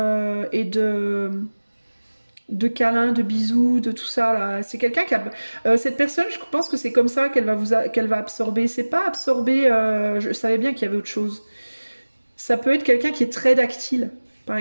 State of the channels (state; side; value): inverted; both; correlation -1.00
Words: et de câlins, de bisous, de tout ça là. C'est quelqu'un qui a cette personne, je pense que c'est comme ça qu'elle va absorber. C'est pas absorber. Je savais bien qu'il y avait autre chose. Ça peut être quelqu'un qui est très tactile, par